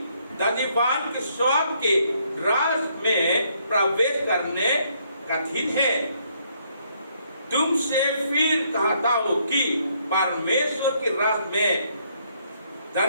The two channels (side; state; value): both; inverted; correlation -0.70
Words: धनवान के स्वर्ग के राज में प्रवेश करने कठिन है। तुमसे फिर कहता हूँ कि परमेश्वर के राज में